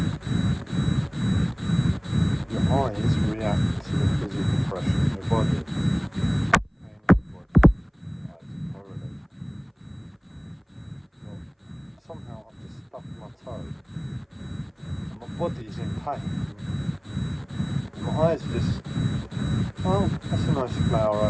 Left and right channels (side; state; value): both; identical; correlation 1.00